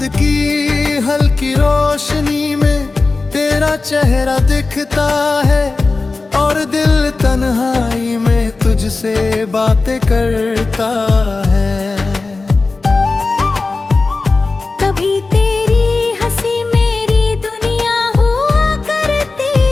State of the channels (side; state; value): right; quieter; 3.7 dB